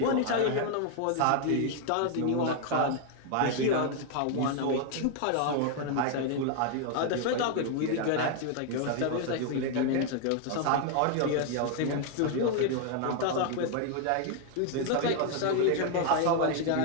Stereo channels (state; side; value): different; both; correlation 0.00